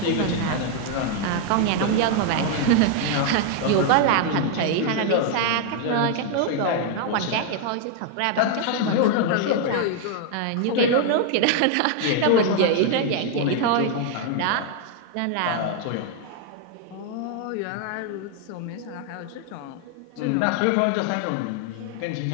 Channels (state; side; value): different; both; correlation 0.00